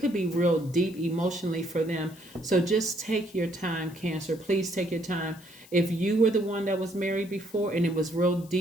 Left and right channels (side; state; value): left; noise; hiss, 23 dB below the sound